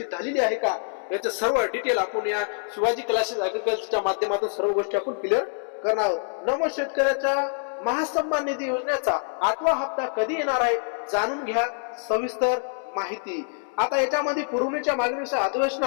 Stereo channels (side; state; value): right; silent; digital silence